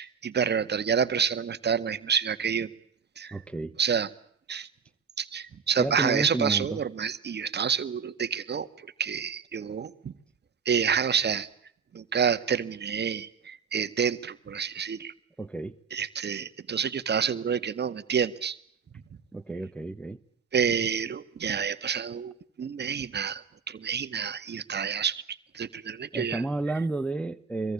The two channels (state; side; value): quieter; left; 6.1 dB